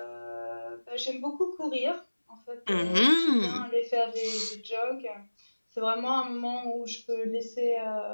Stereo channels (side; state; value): both; inverted; correlation -1.00